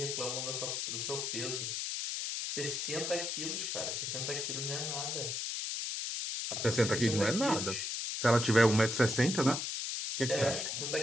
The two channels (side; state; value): left; noise; hiss, 2 dB below the sound